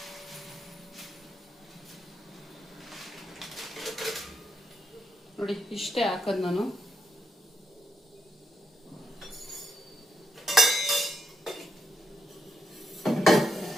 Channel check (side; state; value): both; normal; correlation 0.81